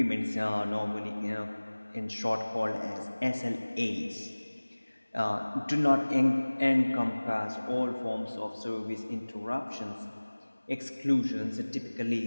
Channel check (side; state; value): both; inverted; correlation -1.00